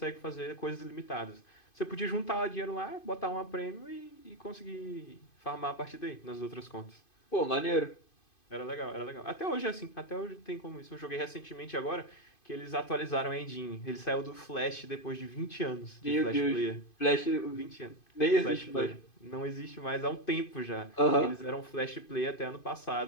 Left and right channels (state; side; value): late; right; 2.5 ms